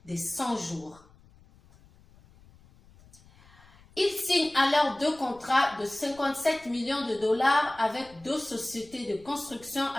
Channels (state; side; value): noise; left; rumble, 26 dB below the sound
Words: des 100 jours. Il signe alors 2 contrats de 57 millions de dollars avec 2 sociétés de construction